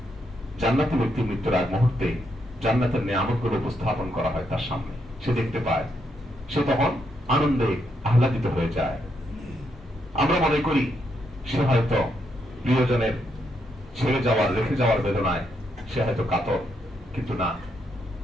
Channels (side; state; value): both; normal; correlation 0.79